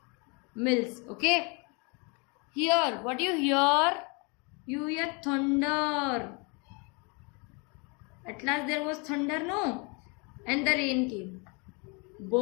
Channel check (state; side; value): quieter; right; 31.5 dB